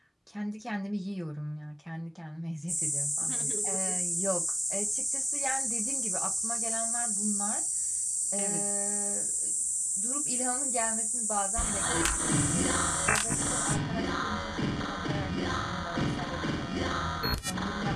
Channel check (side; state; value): both; identical; correlation 1.00